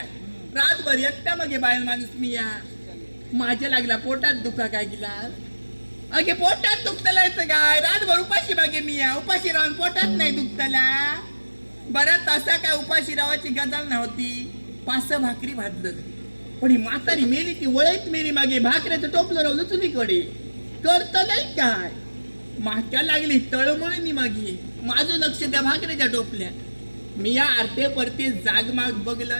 रातभर एकटा मग बाहेर माणूस मी या माझ्या लागला पोटात दुखा काय गेला अगे पोटात दुखतला येतं काय रातभर उपाशी बागे मी या उपाशी राहून पोटात नाही दुखतला. बरं तसा काय उपाशी रावाची गजाल नव्हती. 5 भाकरी भाजलं पण ही म्हातारी मेली ती वळत मेली मागे भाकऱ्याचं टोपलं रावलं चुलीकडे करत नाही काय माक्या लागली तळमळणी मागे माझं लक्ष त्या भाकऱ्याच्या टोपल्या. मी या आरते परते जागमाग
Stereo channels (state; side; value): inverted; both; correlation -1.00